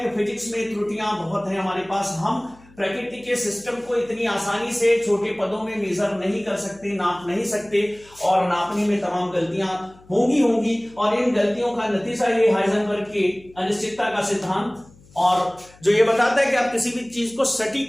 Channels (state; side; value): noise; left; hum, 26 dB below the sound